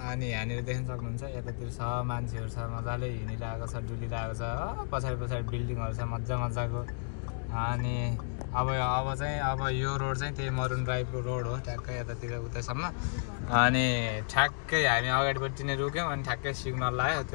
अनि यहाँनिर देख्न सक्नुहुन्छ यतातिर छ मान्छेहरू छ, मजाले हिँडिरहेको छ, डुलिरहेको छ, पछाडि पछाडि बिल्डिङहरू छ मजा मजाको। अनि अब चाहिँ अब यो रोड चाहिँ त्यही मरुन ड्राइभको रोड हो, ठ्याक्कै यतातिर उतैसम्म। अनि ठ्याक्कै हामी अगाडिपट्टि नै रुक्यौँ अनि ठ्याक्कै सिग्नल लाग्यो,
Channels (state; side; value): silent; right; digital silence